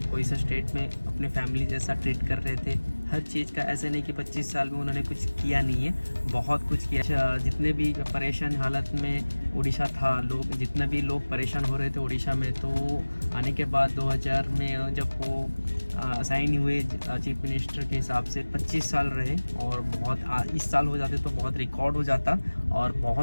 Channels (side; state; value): both; inverted; correlation -1.00